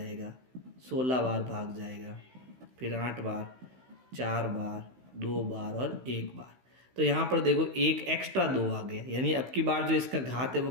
16 बार भाग जाएगा, फिर 8 बार, 4 बार, 2 बार और 1 बार। तो यहाँ पर देखो एक एक्स्ट्रा 2 आ गया, यानी अब की बार जो इसका घात है वो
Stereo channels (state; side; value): late; left; 16 ms